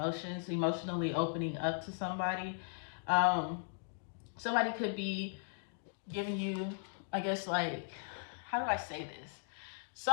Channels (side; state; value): right; silent; digital silence